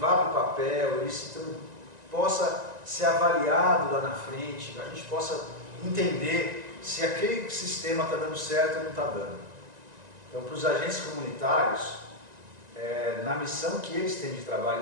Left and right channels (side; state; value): left; late; 1.9 ms